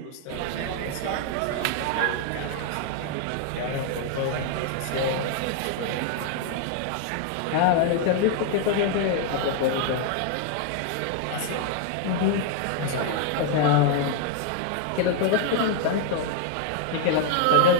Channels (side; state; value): both; different; correlation 0.00